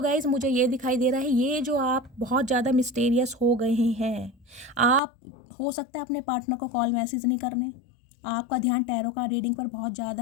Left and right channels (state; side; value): drops out; right; at 5.0 s